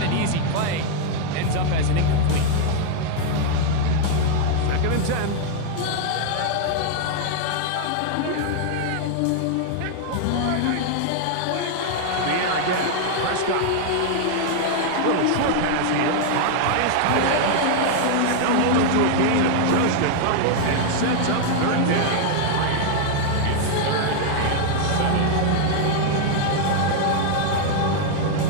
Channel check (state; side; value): different; both; correlation 0.00